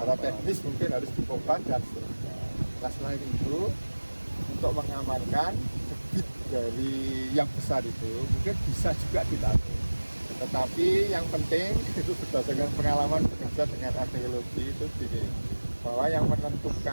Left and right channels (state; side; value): inverted; both; correlation -1.00